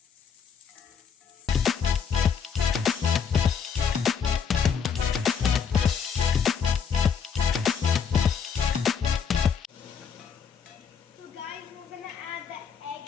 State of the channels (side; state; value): right; quieter; 6.7 dB